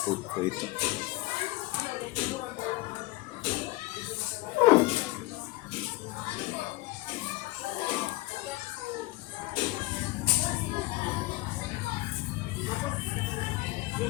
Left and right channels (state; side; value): quieter; right; 20.3 dB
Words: coat po ito.